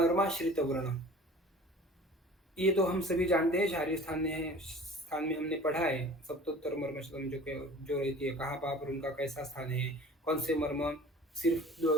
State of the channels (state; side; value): normal; both; correlation 0.44